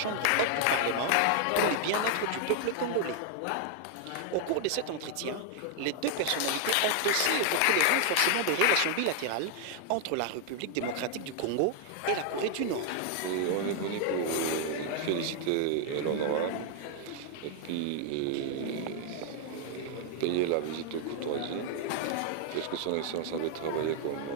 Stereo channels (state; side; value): different; both; correlation 0.00